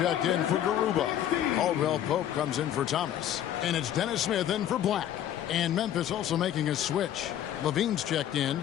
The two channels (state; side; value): quieter; right; 11.1 dB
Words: in for Garuba. Caldwell Pope comes in for Thomas. And it's Dennis Smith in for Black. And Memphis also making a switch. Levine's checked in.